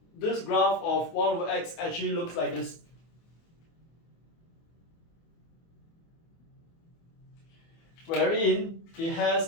this graph of 1 over x actually looks like this. Wherein it has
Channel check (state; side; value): late; right; 24 ms